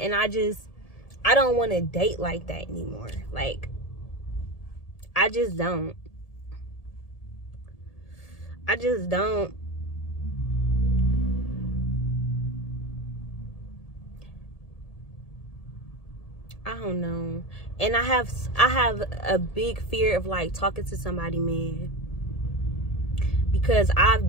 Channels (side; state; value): right; late; 1.7 ms